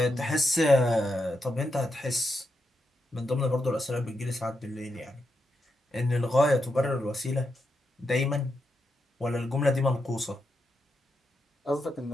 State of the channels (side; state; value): both; normal; correlation 0.84